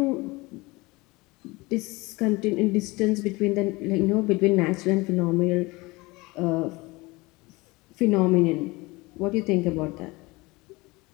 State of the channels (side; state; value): right; quieter; 23.2 dB